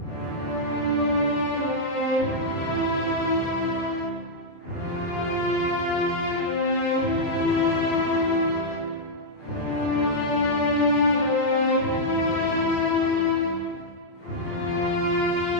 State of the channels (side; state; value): right; late; 29 ms